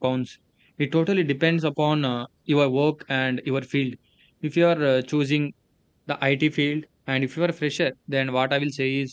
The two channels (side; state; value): both; identical; correlation 1.00